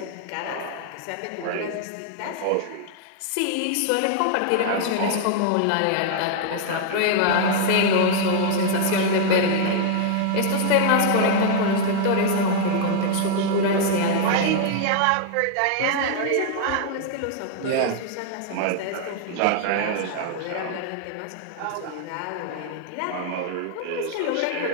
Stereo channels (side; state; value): both; different; correlation 0.00